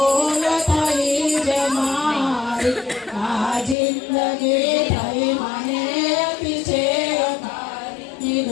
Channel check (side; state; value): right; drops out; at 3.8 s